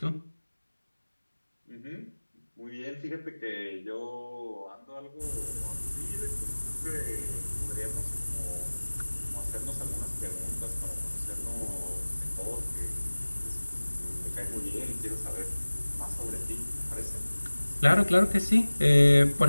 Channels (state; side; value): inverted; both; correlation -1.00